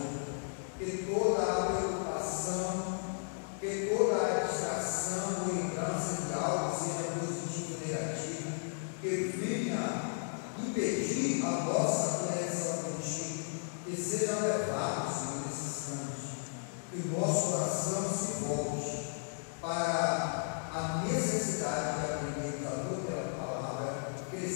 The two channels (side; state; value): right; silent; digital silence